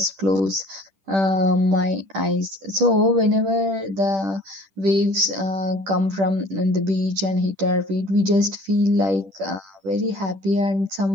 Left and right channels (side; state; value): left; late; 10 ms